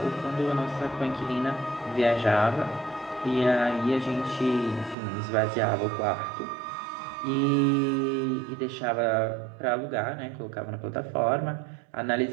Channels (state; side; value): drops out; left; at 5.0 s